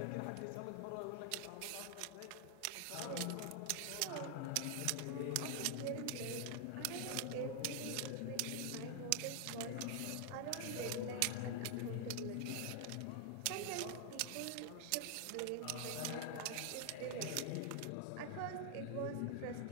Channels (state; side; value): different; both; correlation 0.00